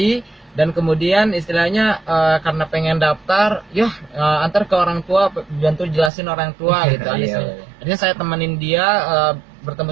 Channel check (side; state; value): left; drops out; at 6.1 s